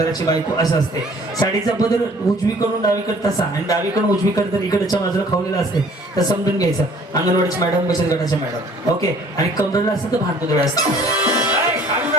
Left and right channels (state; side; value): normal; both; correlation 0.54